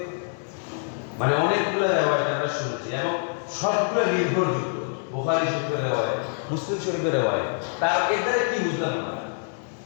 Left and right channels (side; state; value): right; silent; digital silence